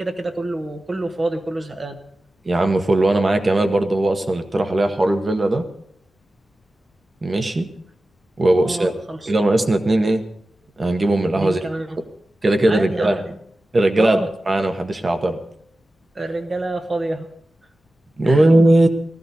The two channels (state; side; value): normal; both; correlation 0.95